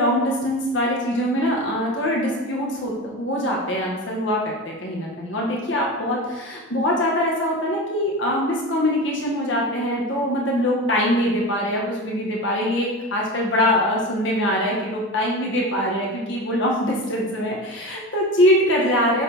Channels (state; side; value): normal; both; correlation 0.27